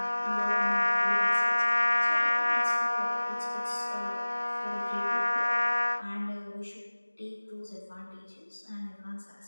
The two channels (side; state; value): both; inverted; correlation -1.00